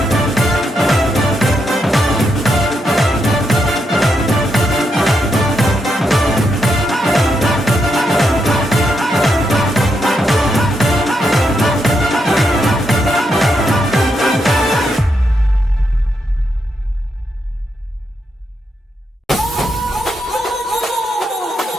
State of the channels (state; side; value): normal; both; correlation 0.81